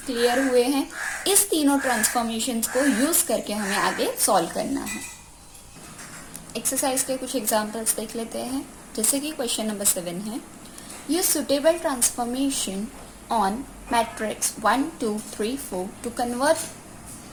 क्लियर हुए हैं। इस तीनों ट्रांसफॉर्मेशंस को यूज करके हमें आगे सॉल्व करना है। एक्सरसाइज के कुछ एग्जांपल्स देख लेते हैं, जैसे कि क्वेश्चन नंबर 7 है, use suitable transformation on matrix 1 2 3 4 to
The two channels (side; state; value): both; identical; correlation 1.00